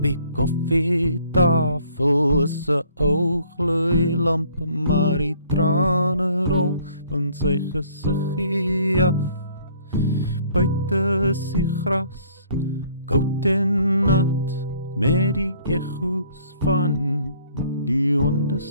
die koffietafel is 'n ou gloeilamp, maar die trane rol van sy gesiggie af. Buite is die gras koud en nat, met die echo's van die honde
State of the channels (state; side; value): inverted; both; correlation -0.59